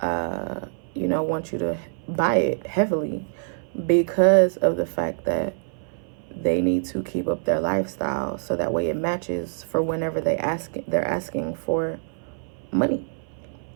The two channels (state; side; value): silent; left; 57 dB below the other